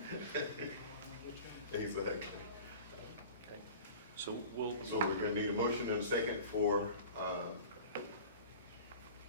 Exactly. Okay. So So we're gonna need a motion and a second for,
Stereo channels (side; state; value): both; inverted; correlation -0.39